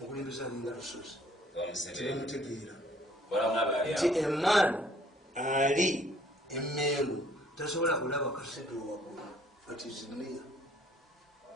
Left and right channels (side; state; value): both; normal; correlation 0.60